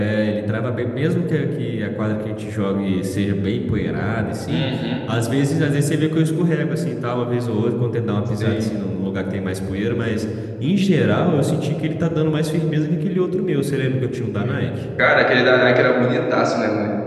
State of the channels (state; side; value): identical; both; correlation 1.00